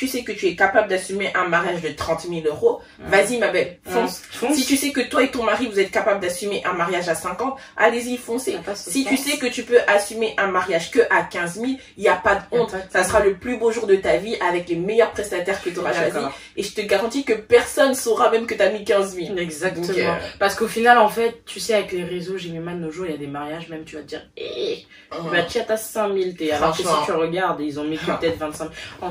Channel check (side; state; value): both; identical; correlation 1.00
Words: sais que tu es capable d'assumer un mariage de 30 000 euros, vas-y ma belle, fonce. Si tu sais que toi et ton mari, vous êtes capable d'assumer un mariage à 50, allez-y, foncez. Si tu sais que tu peux assumer un mariage que à 15 000, il n'y a pas de honte. Ça sera le plus beau jour de ta vie avec les meilleurs prestataires que tu auras choisis. Et je te garantis que personne saura même que tu as mis 15 000. Exactement. Donc, parce qu'au final, en fait, tu sais, avec les réseaux, j'ai mis mal nos jours, il y a des mariages, même tu vas te dire, tu as 5 000, alors que si tu regardes, ils ont mis peut-être 25 000. En